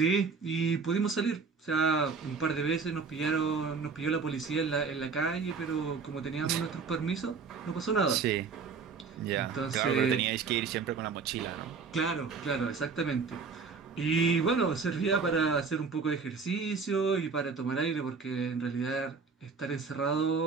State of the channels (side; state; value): left; quieter; 5.1 dB